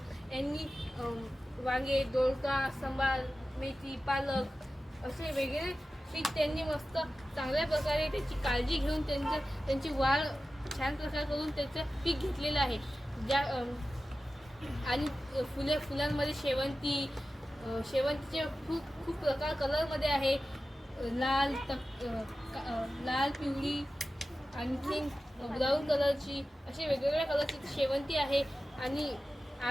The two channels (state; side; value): normal; both; correlation 0.94